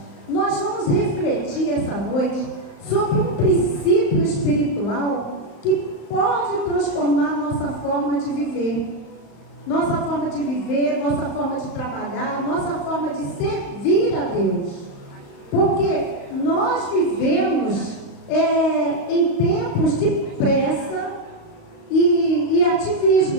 nós vamos refletir essa noite sobre um princípio espiritual que pode transformar nossa forma forma de viver. Nossa forma de viver, nossa forma de trabalhar, nossa forma de servir a Deus. Porque nós vivemos em tempos de pressa e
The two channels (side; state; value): right; late; 35 ms